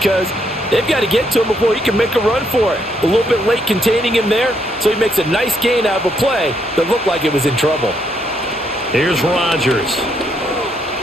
they've got to get to him before he can make a run for it. A little bit late containing him there, so he makes a nice gain out of a play that looked like it was in trouble. Here's Rodgers.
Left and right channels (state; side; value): normal; both; correlation 0.74